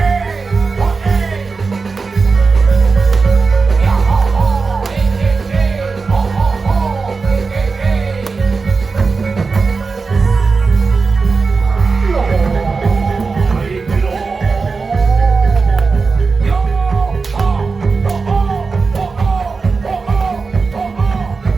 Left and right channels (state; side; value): quieter; left; 4.5 dB